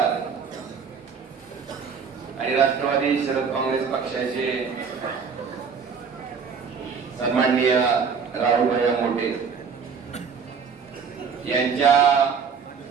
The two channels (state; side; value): quieter; left; 6.1 dB